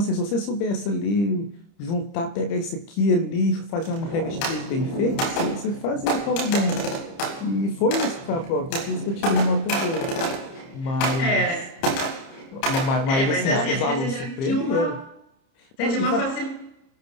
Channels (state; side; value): late; right; 30 ms